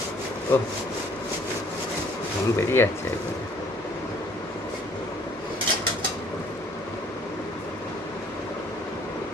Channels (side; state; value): both; normal; correlation 0.59